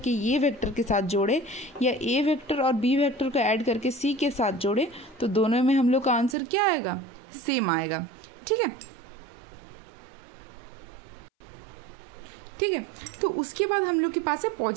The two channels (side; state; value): left; drops out; at 6.4 s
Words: ए वेक्टर के साथ जोड़े या ए वेक्टर और बी वेक्टर को ऐड करके सी के साथ जोड़े, तो दोनों में हम लोग का आंसर क्या आएगा, सेम आएगा। ठीक है। ठीक है। तो उसके बाद हम लोग के पास है